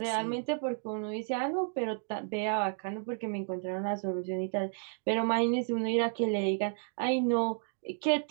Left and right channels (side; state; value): left; silent; 56 dB below the other